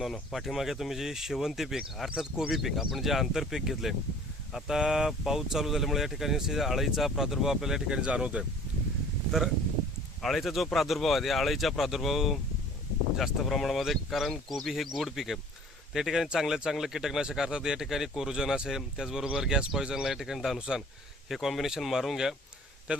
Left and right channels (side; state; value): both; normal; correlation 0.50